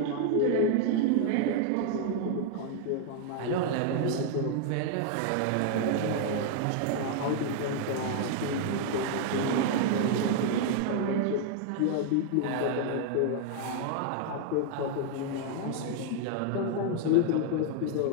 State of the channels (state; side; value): different; both; correlation 0.00